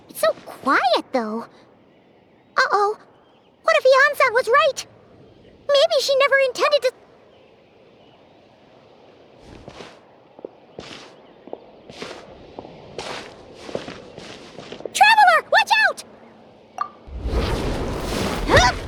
it's so quiet though. Uh-oh. What if Yansan was right? Maybe she never intended to... Traveler, watch out!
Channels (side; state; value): both; identical; correlation 1.00